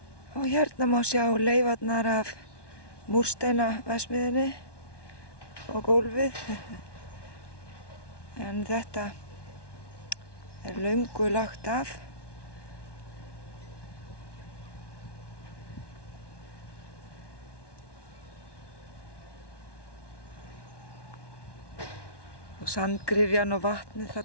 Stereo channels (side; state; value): right; late; 1.2 ms